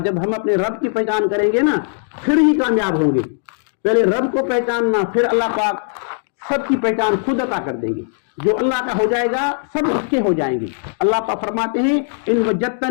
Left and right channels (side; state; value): right; silent; digital silence